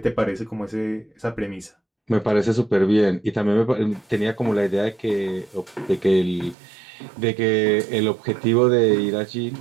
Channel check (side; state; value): left; drops out; at 6.6 s